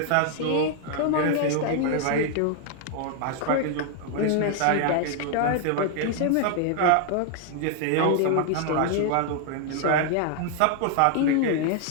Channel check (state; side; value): different; both; correlation 0.00